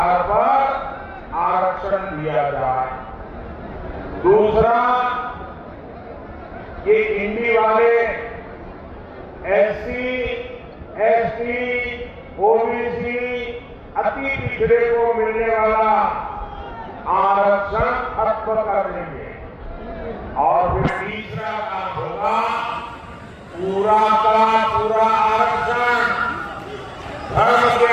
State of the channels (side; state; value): both; identical; correlation 1.00